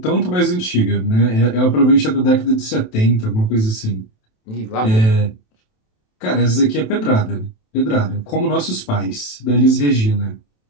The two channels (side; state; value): right; late; 27 ms